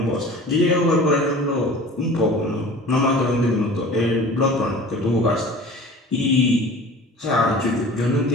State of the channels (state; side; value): normal; both; correlation 0.42